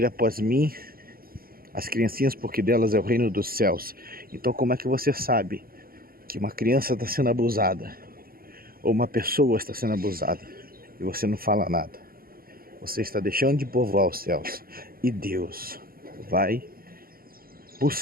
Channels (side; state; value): left; late; 0.43 ms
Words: após mim as criancinhas, porque delas é o reino dos céus. Então como é que você sabe que uma criança está sendo abusada ou uma pessoa está sendo abusada e você não fala nada? Você está deixando de povoar os céus, e Deus vai